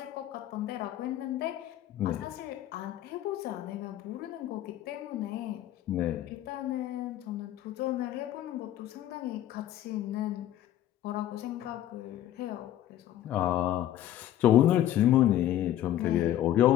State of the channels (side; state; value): right; quieter; 12.3 dB